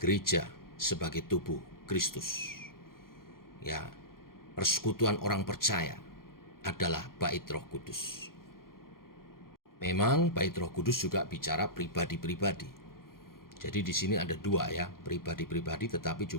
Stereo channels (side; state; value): right; late; 0.92 ms